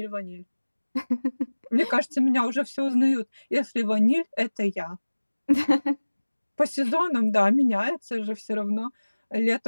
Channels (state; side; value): inverted; both; correlation -1.00